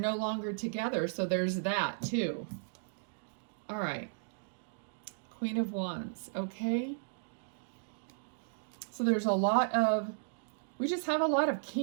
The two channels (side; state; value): left; silent; digital silence